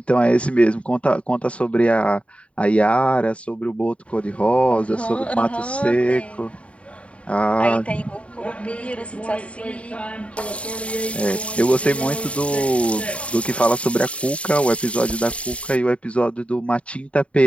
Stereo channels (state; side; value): late; right; 0.062 ms